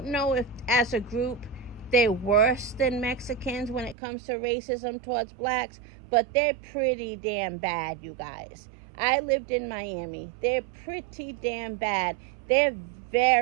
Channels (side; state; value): left; drops out; at 4.0 s